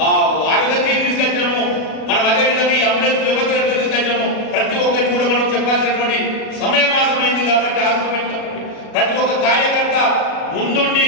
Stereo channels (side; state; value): right; late; 37 ms